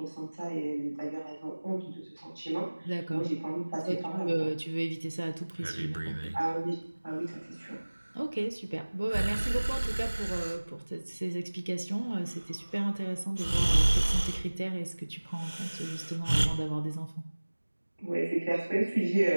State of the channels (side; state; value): both; inverted; correlation -1.00